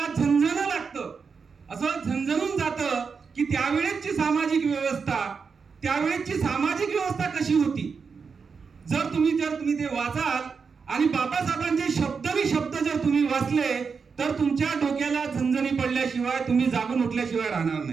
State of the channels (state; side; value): quieter; left; 5.5 dB